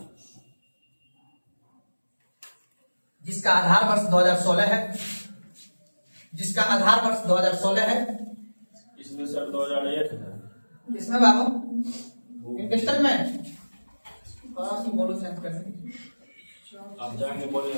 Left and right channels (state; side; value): inverted; both; correlation -1.00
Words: जिसका आधार वर्ष 2016 है, है। इसमें सर 2001 है, इसमें बाबू इंडस्ट्रियल में बोलो सेंस करने आप जाएंगे बोले